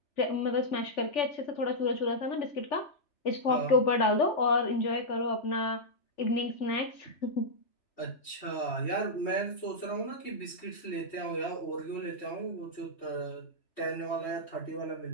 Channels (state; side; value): late; right; 3.4 ms